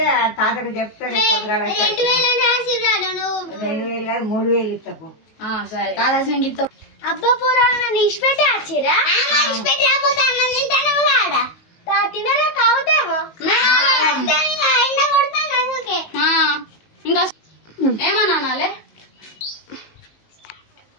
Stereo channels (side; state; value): right; late; 19 ms